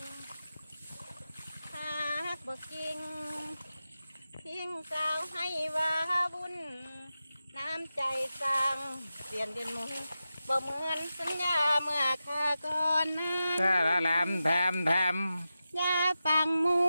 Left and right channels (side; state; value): both; inverted; correlation -0.92